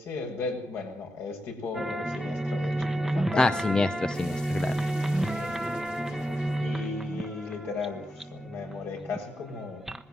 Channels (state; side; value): normal; both; correlation 0.87